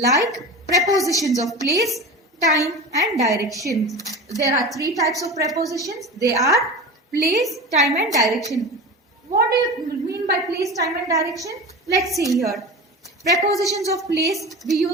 prepositions of place, time and direction. There are three types of prepositions. They are place, time and direction. What do you mean by place, time and direction? Let's see here. Prepositions of place we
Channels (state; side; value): normal; both; correlation 0.30